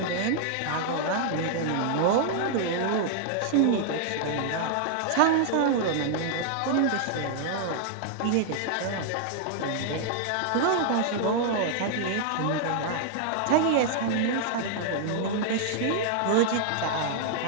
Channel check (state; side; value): different; both; correlation 0.00